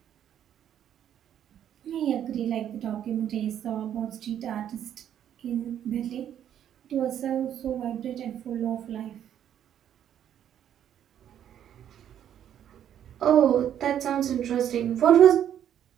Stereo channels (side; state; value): left; quieter; 10.1 dB